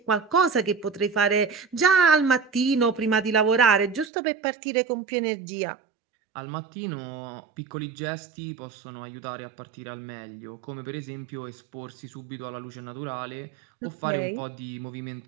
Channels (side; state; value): left; drops out; at 4.1 s